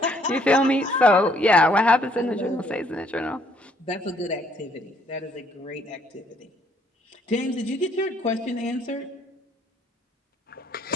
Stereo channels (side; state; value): both; normal; correlation 0.66